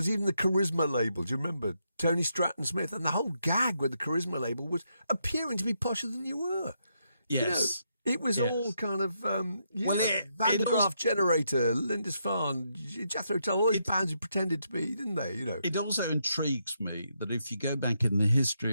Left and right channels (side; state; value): both; inverted; correlation -0.79